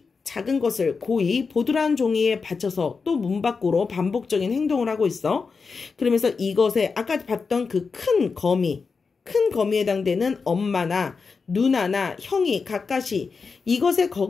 작은 것을 고이 보드란 종이에 받쳐서 또 문 밖으로 반복적인 행동을 하고 있어. 그러면서 이것에 아까 봤던 그 큰 거미에 해당되는 엄마나 누나나 형이 가까이 이것에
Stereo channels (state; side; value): quieter; right; 4.9 dB